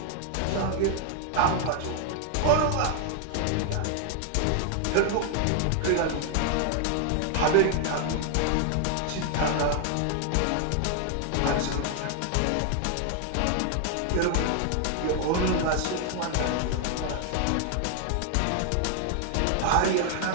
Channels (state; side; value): different; both; correlation 0.00